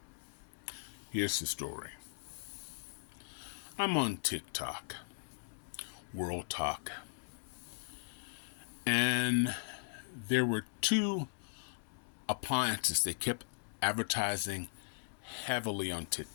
Here's the story. I'm on Tic Toc, World Talk, and there were two appliances they kept advertising heavily on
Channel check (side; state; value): right; silent; digital silence